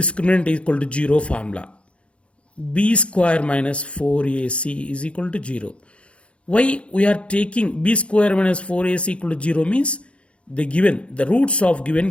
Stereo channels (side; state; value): right; late; 0.060 ms